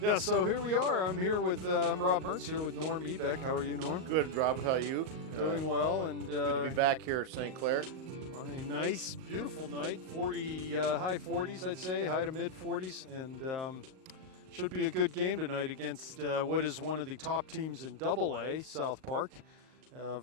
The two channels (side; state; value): left; late; 38 ms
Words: so here we are. I'm here with I'm Rob Mertz here with Norm Ebeck. How are you, Norm? Good, Rob. How are you? Doing well, and good to be back here at St. Clair on a nice, beautiful night. 40 high 40s, I'd say, high to mid 40s, and should be a good game tonight against what is one of the top teams in AA, South Park,